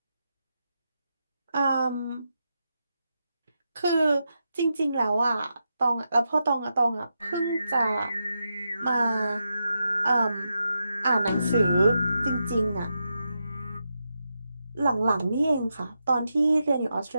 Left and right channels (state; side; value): inverted; both; correlation -0.86